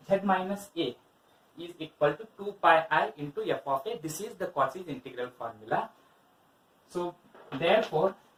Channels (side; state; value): both; identical; correlation 1.00